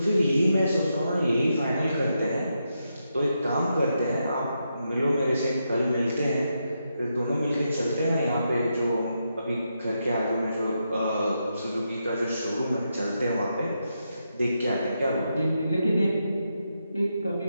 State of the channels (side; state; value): both; inverted; correlation -0.84